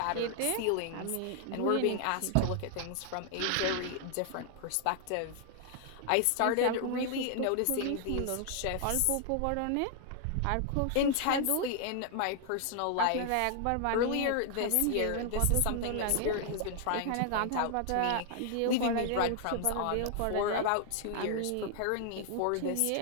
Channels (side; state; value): both; different; correlation 0.00